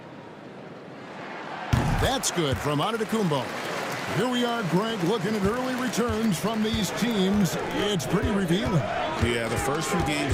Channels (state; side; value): identical; both; correlation 1.00